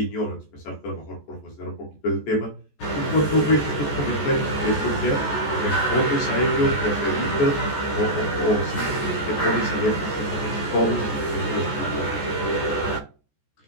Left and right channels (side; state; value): right; late; 14 ms